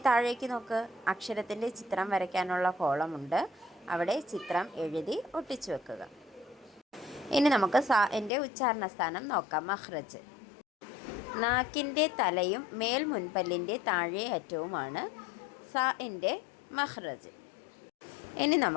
താഴേക്ക് നോക്ക്. അക്ഷരത്തിൻ്റെ ചിത്രം വരയ്ക്കാനുള്ള കോളമുണ്ട്. അവിടെ ചിത്രം എഴുതി ഒട്ടിച്ചു വെക്കുക. ഇനി നമുക്ക് സാഇൻ്റെ ഉച്ചാരണ സ്ഥാനം നോക്കാം. മഖ്റജ്. നാക്കിൻ്റെ തലയും മേൽ മുൻപല്ലിൻ്റെ താഴെ അറ്റവുമാണ് സാഇൻ്റെ മഖ്റജ്. ഇനി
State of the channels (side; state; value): right; drops out; at 8.3 s